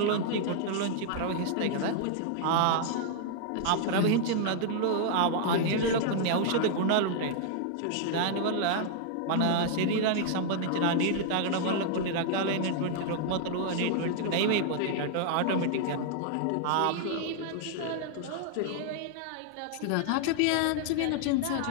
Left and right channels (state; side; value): different; both; correlation -0.01